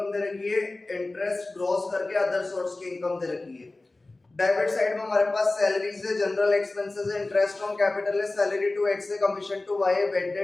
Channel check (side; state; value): right; quieter; 3.1 dB